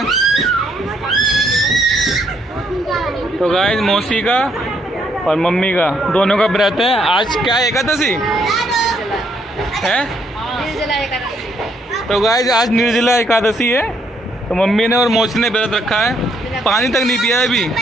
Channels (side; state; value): both; normal; correlation 0.71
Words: तो गाइस मौसी का और मम्मी का दोनों का व्रत है। आज क्या एकादशी है? तो गाइस आज निर्जला एकादशी है। तो मम्मी ने और मौसी ने व्रत रखा है, पानी तक नहीं पिया है